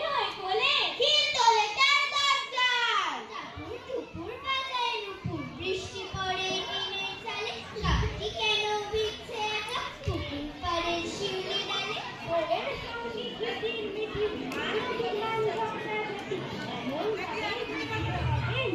নয় কোলে, খিল তোলে তার দরজায়। টাপুর টুপুর বাজায় নুপুর, বৃষ্টি পড়ে টিনের চালে, গাছটি কেন ভিজছে একা পুকুর পাড়ের শিউলি ডালে। ওদের সঙ্গে কিটির মিটির মানবী গান ঝগড়াঝাটি, এমন ভাবে বৃষ্টি হবে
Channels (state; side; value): identical; both; correlation 1.00